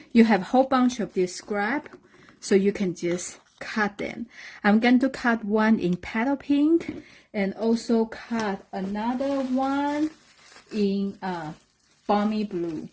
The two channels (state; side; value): identical; both; correlation 1.00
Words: you have a whole bunch of this scrap, so you can just cut them. I'm going to cut one in petal pink and also cut another one in balmy blue.